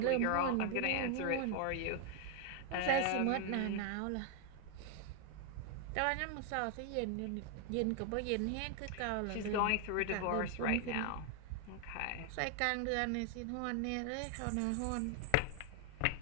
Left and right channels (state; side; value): different; both; correlation 0.00